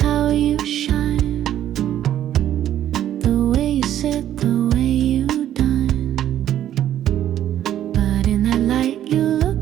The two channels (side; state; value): left; quieter; 11.4 dB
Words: how you shine. The way you sit, the way you dine. But in that light you